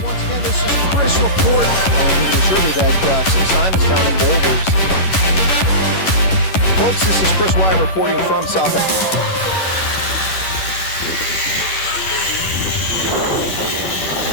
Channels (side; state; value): right; late; 11 ms